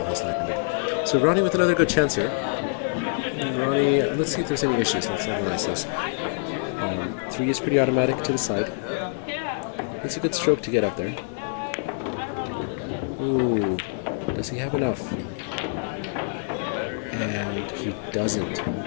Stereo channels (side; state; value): right; silent; digital silence